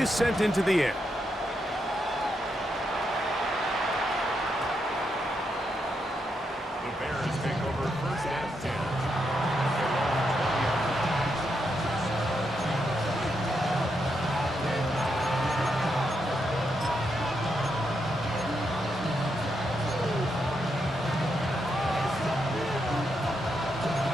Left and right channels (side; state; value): both; normal; correlation 0.82